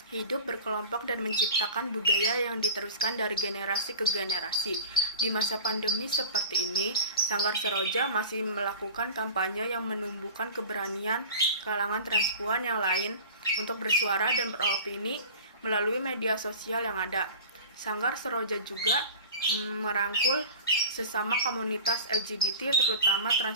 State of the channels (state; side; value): inverted; both; correlation -0.37